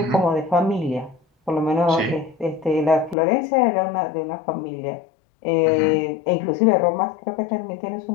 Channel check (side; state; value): right; drops out; at 3.2 s